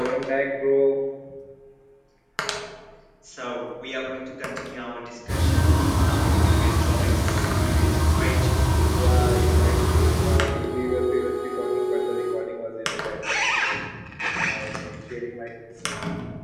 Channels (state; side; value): identical; both; correlation 1.00